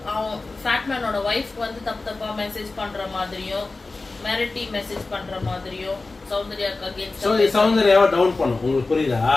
அவன் ஃபேட்மேனோட வைஃப் வந்து தப்பா மெசேஜ் பண்ற மாதிரியும் மிரட்டி மெசேஜ் பண்ற மாதிரியும் சௌந்தர்யாக்கு அகைன்ஸ்ட் சௌந்தர்யாவை டவுன் பண்ணும். உங்களுக்கு புரியுதா?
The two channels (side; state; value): right; quieter; 3.5 dB